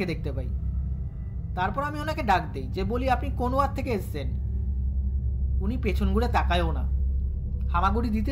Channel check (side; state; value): both; identical; correlation 1.00